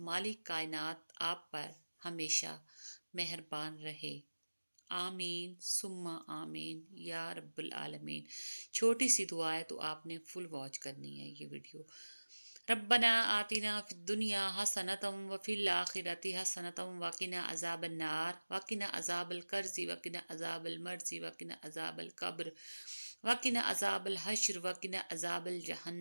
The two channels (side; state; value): both; inverted; correlation -1.00